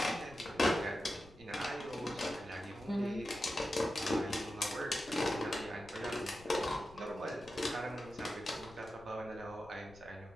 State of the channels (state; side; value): noise; left; rumble, 21 dB below the sound